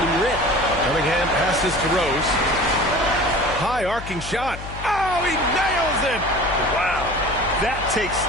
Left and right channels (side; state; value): left; noise; hum, 11 dB below the sound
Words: him rip. Cunningham passes to Rose. High arcing shot. Oh, he nails it. Wow. That takes